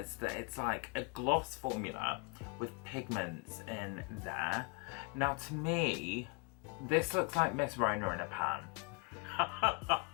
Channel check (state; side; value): quieter; right; 31.4 dB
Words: that it's like a gloss formula with pigments in there. Now to me, this looks like Miss Rona in a pan.